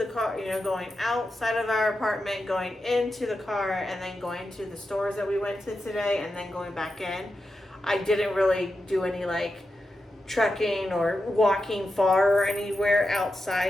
car, you know, going outside of our apartment, going into the car, and then going to the stores that we went to today, and then going back in. I didn't really do any like trekking or walking far or anywhere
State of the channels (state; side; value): normal; both; correlation 0.89